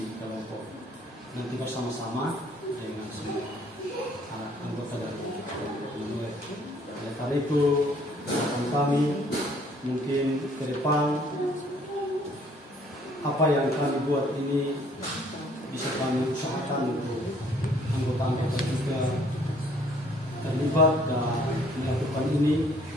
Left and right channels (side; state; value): both; normal; correlation 0.60